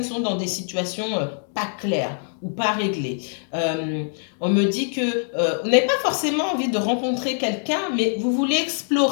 qui sont dans des situations pas claires ou pas réglées. On me dit que vous n'avez pas forcément envie de rencontrer quelqu'un, mais vous voulez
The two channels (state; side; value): silent; right; digital silence